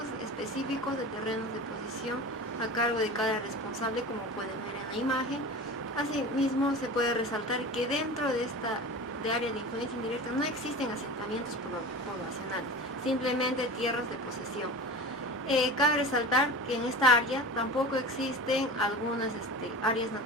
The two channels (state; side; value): normal; both; correlation 0.33